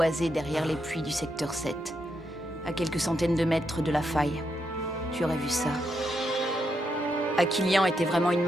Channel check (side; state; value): both; normal; correlation 0.81